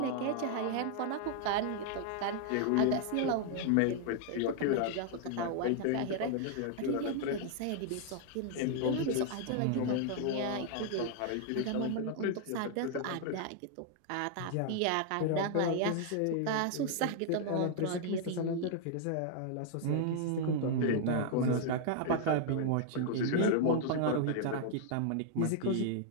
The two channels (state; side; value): different; both; correlation 0.00